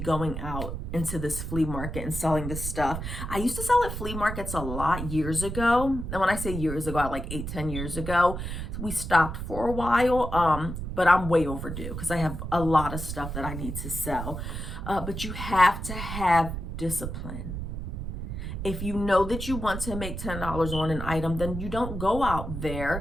out into this flea market and selling this stuff. I used to sell at flea markets a lot years ago. And when I say years ago, like 8-10 years ago, we stopped for a while, but I'm way overdue because I have a lot of stuff that I need to sell. But you have to have discipline. If you know that you want to make $10 on an item, then you don't go out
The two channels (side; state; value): right; noise; rumble, 6 dB below the sound